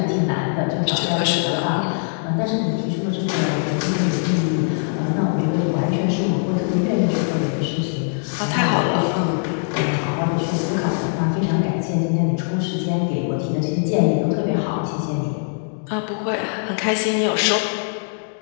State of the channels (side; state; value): right; silent; digital silence